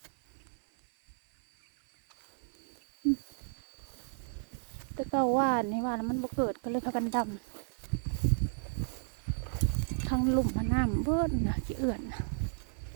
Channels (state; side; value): silent; left; 56 dB below the other